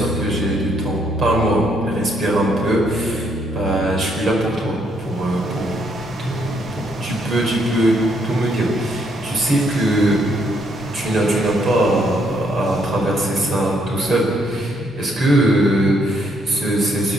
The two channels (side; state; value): both; normal; correlation 0.72